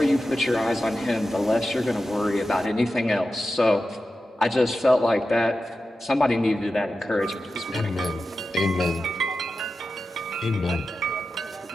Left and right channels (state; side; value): normal; both; correlation 0.92